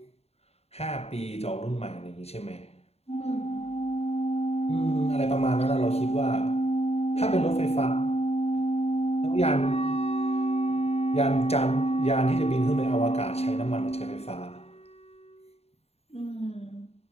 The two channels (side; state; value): right; late; 0.30 ms